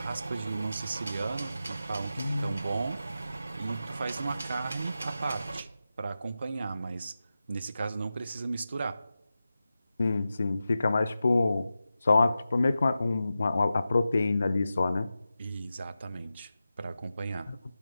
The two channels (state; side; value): inverted; both; correlation -0.92